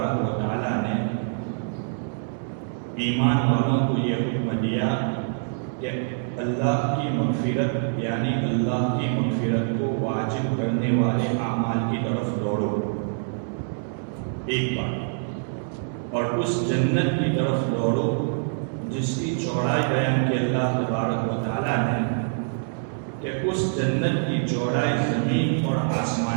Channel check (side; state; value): left; silent; 62 dB below the other